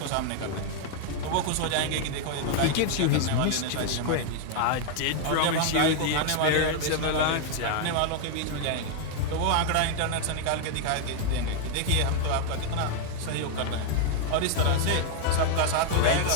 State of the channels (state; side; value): different; both; correlation 0.00